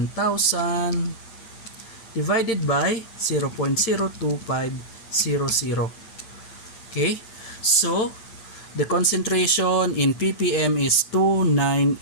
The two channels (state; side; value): late; right; 9.0 ms